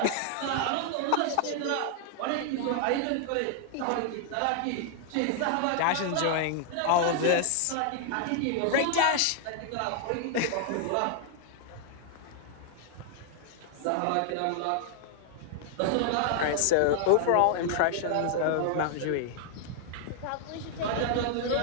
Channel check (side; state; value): both; different; correlation 0.00